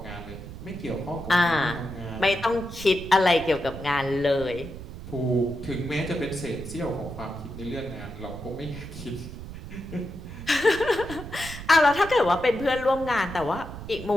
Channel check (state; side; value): noise; right; rumble, 11 dB below the sound